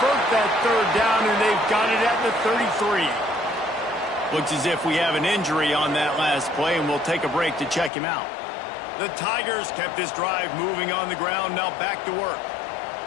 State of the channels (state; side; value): drops out; right; at 7.9 s